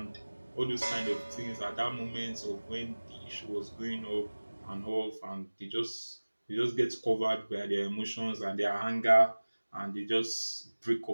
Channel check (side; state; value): both; inverted; correlation -1.00